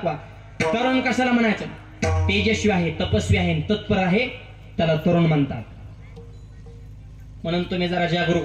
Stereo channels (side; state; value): both; identical; correlation 1.00